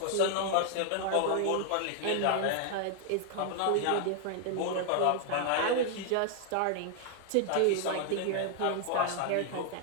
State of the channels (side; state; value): both; different; correlation 0.00